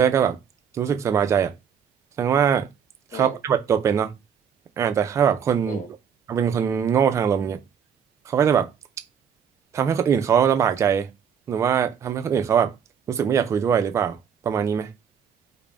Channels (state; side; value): quieter; left; 7.7 dB